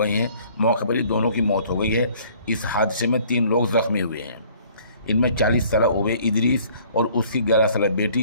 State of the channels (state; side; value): inverted; both; correlation -0.56